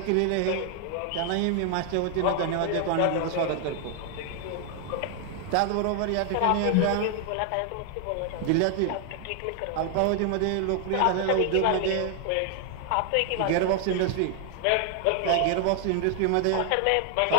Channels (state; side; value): different; both; correlation 0.00